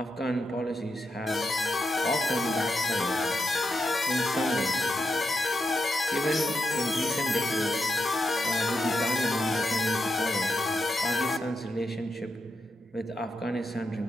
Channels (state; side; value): normal; both; correlation 0.84